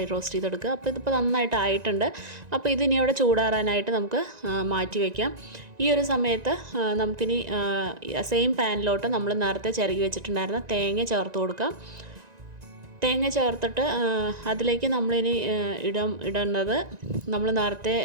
റോസ്റ്റ് ചെയ്തെടുക്കുക. അപ്പോൾ ഇതിപ്പോൾ നന്നായിട്ട് ആയിട്ടുണ്ട്. അപ്പോൾ ഇതിനി അവിടെ ചൂടാറാനായിട്ട് നമുക്ക് മാറ്റി വയ്ക്കാം. ഈ ഒരു സമയത്ത് നമുക്കിനി സെയിം പാനിലോട്ട് നമ്മൾ നേരത്തെ ചിരകി വെച്ചിട്ടുണ്ടായിരുന്ന തേങ്ങ ചേർത്ത് കൊടുക്കാം. തേങ്ങ ചേർത്തിട്ട് അതിലേക്ക് നമ്മളിനി ഇടേണ്ടത് നമ്മൾ നേരത്തെ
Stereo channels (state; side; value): late; left; 1.9 ms